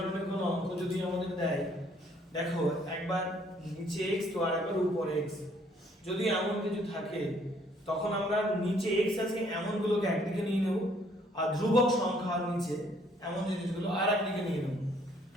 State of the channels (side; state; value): both; normal; correlation 0.64